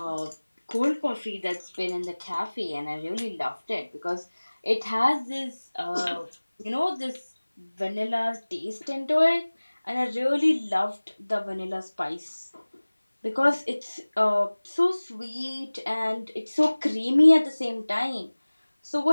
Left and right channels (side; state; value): both; inverted; correlation -1.00